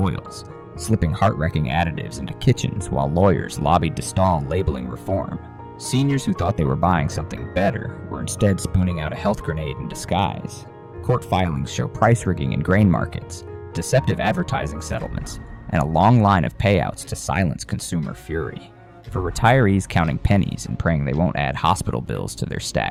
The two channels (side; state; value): both; identical; correlation 1.00